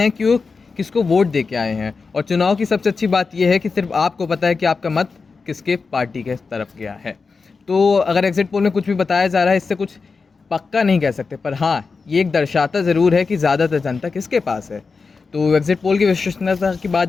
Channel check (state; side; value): quieter; right; 4.6 dB